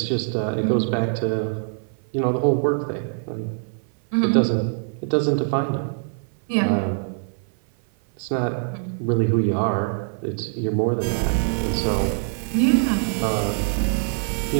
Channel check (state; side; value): silent; left; 56 dB below the other